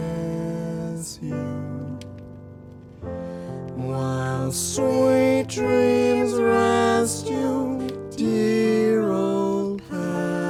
you, while sweet dreams rest you, dear old pal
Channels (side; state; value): both; identical; correlation 1.00